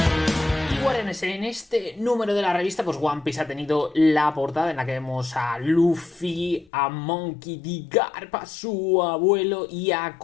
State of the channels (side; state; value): right; drops out; at 6.7 s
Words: Y guardianes, en este número de la revista, pues One Piece ha tenido la portada en la que vemos a Luffy, a Monkey D. Garp, a su abuelo y a